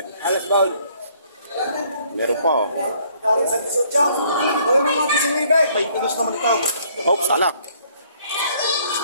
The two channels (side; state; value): both; inverted; correlation -0.63